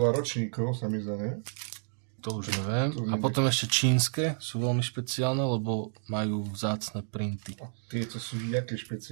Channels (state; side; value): silent; left; digital silence